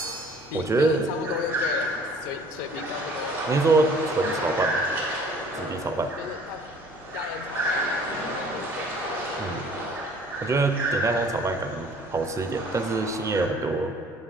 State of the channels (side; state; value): both; normal; correlation 0.53